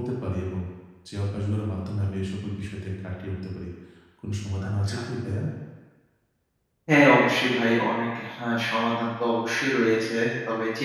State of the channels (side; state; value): both; identical; correlation 1.00